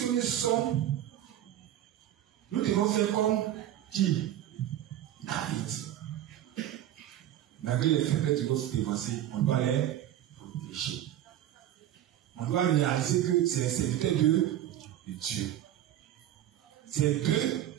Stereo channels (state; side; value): quieter; left; 12.1 dB